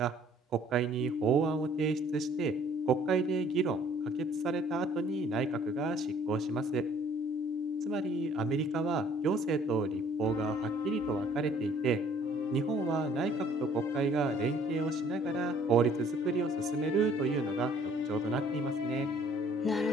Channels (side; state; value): both; normal; correlation 0.58